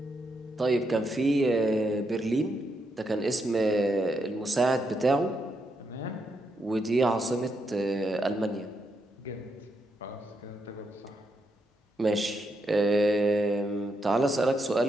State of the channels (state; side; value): normal; both; correlation 0.80